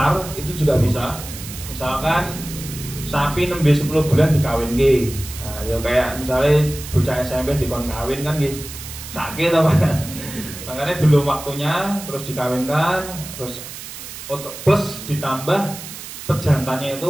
itu juga bisa. Misalkan sapi 10 bulan dikawin ke, nah, ya kayak misalnya bocah SMP dikon kawin kan gitu, sakit apa? Makanya belum waktunya, terus dikawinkan, terus plus ditambah pejantannya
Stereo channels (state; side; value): noise; right; hiss, 12 dB below the sound